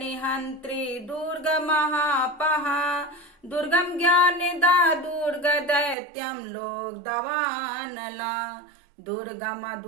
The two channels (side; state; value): left; drops out; at 6.0 s